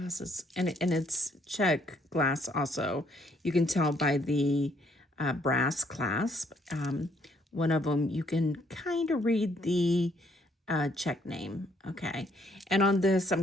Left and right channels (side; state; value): both; normal; correlation 0.67